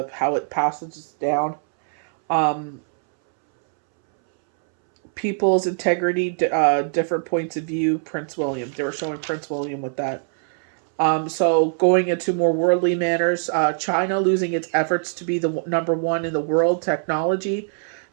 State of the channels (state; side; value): silent; left; 64 dB below the other